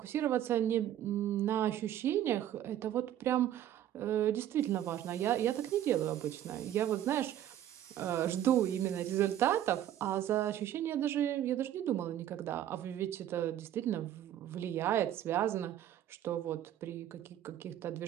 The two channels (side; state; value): left; quieter; 11.6 dB